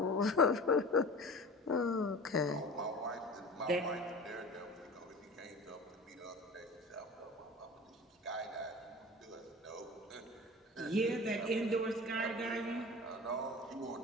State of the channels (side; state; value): both; normal; correlation 0.37